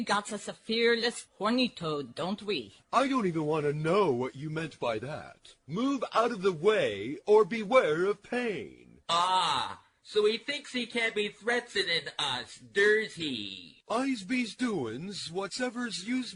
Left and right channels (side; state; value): both; identical; correlation 1.00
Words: got us a fearless horny toad, don't we? I don't even want to know what you meant by that. Move out of the way or beware of pain. Ah, so he thinks he can be threatening us, does he? I's be's doin's, whatsever's yous